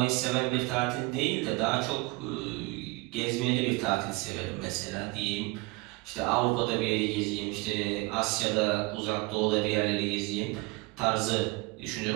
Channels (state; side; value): quieter; left; 24.0 dB